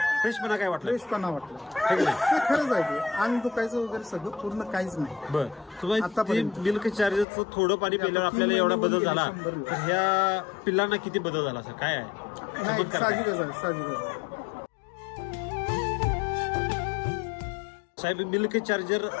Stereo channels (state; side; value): drops out; right; at 7.2 s